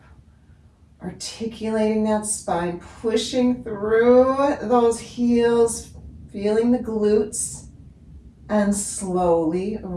articulating that spine, pushing through those heels, feeling the glutes, and slowly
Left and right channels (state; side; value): identical; both; correlation 1.00